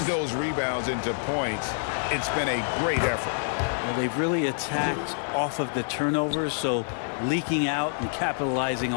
those rebounds into points. It's been a great effort. Well, they've really attacked off of the turnovers, so leaking out and capitalizing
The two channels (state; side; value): silent; right; digital silence